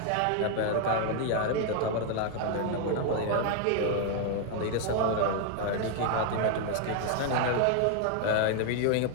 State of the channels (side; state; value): both; different; correlation 0.00